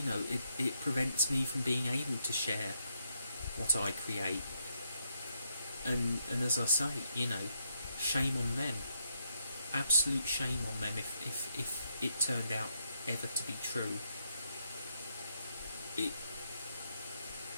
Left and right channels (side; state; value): both; inverted; correlation -0.78